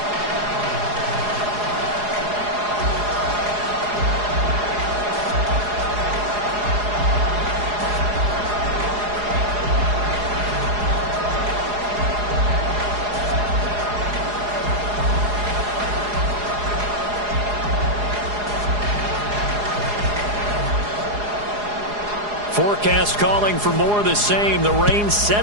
Forecast calling for more of the same. The rain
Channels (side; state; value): left; late; 4.8 ms